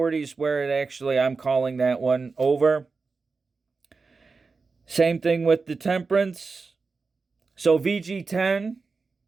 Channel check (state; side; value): quieter; left; 4.4 dB